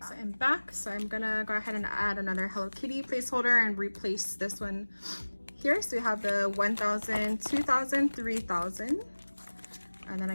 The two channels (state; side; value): inverted; both; correlation -1.00